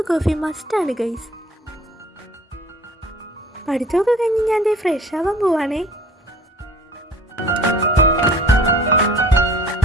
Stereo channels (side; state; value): both; normal; correlation 0.49